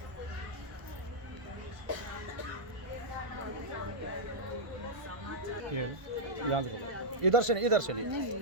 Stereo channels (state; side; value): late; left; 1.5 ms